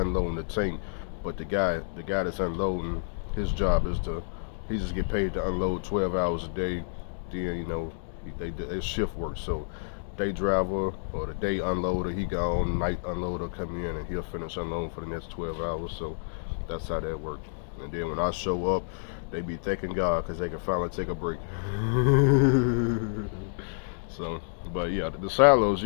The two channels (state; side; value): silent; right; digital silence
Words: the tank, but the guy that's unloading, his job is he just get paid to unload 12 hours a day. Then they shift work. So day driver or the day unloader, he gone. Night unloader come in and he'll finish unloading for the next 12 hours. So that's how that works. And then when I show up, they be thanking God because they can finally take a break. So, but yeah, the silos,